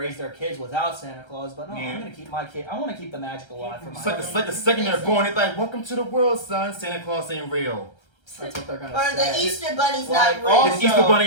their kids without Santa Claus, but no, Yeah. I'm going to keep my kid. I want to keep the magic alive for my It's like the second they're born, it's like, welcome to the world, son. Santa Claus ain't real. That's what they're going to Or say. the Easter Bunny's Like, not real. also, The Easter Bunny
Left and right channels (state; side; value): late; right; 1.3 ms